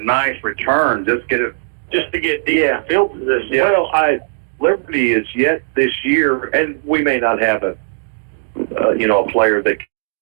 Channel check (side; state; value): left; silent; 68 dB below the other